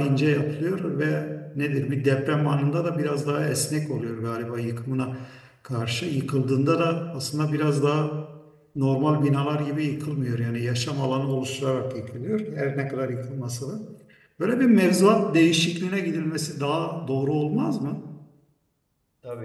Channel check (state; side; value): identical; both; correlation 1.00